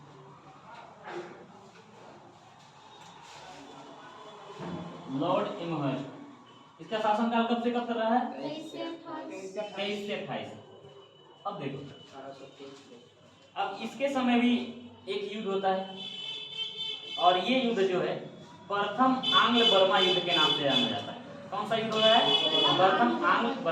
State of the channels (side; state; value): both; identical; correlation 1.00